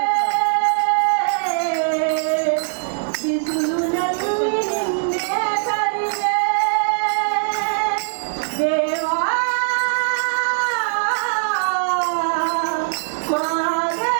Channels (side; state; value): left; silent; 65 dB below the other